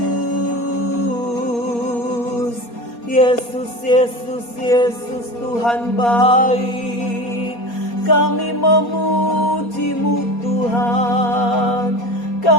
Yesus, Yesus, Yesus, Tuhan baik. Kami memuji-Mu Tuhan,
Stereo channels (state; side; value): late; right; 4.2 ms